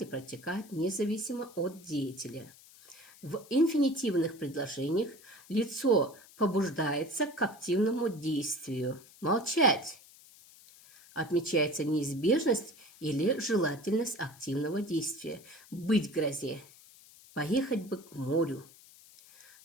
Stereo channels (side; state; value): left; noise; hiss, 23 dB below the sound